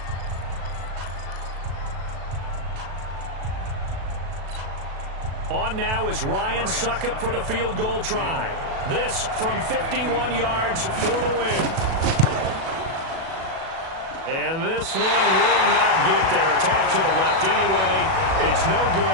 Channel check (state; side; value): late; left; 37 ms